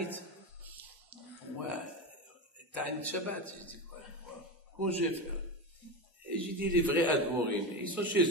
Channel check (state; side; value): normal; both; correlation 0.19